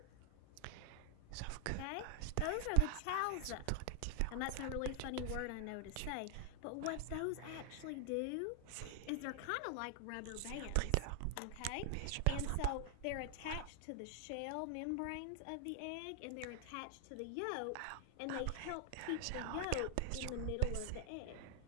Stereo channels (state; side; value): different; both; correlation 0.00